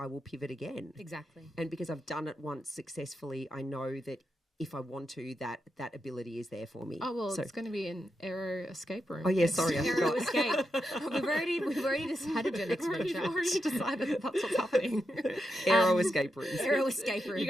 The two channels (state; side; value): normal; both; correlation 0.86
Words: will pivot again. Exactly. And because I've done it once successfully, I know that if I want to, that ability is there for me. Oh, well, it's going to be an aero escape room. Oh, yeah, sorry, I Aero forgot. escape. We've already decided your next We've venture. already decided that that's what's happening. Aero escape rooms. Aero escape rooms. You're